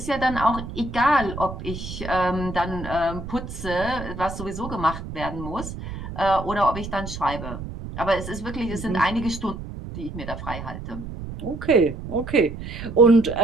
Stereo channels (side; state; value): right; noise; rumble, 9 dB below the sound